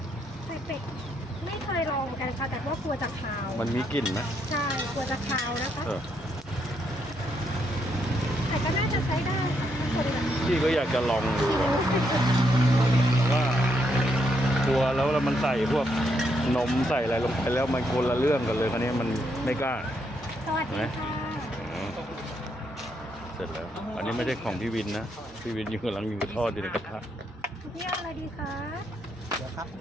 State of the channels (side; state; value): both; normal; correlation 0.77